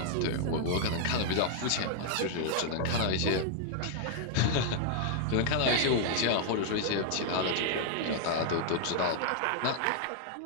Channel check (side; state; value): both; different; correlation 0.00